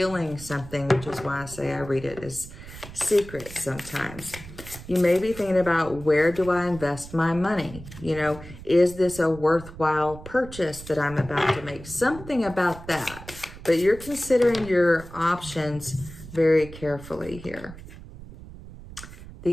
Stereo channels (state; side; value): noise; right; rumble, 15 dB below the sound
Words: something, which is why I say I read it as secret sometimes. You may be thinking about, where do I invest my money? You know, is this a worthwhile purchase that I'm about to make? Something about that. But you're considering your options very carefully here.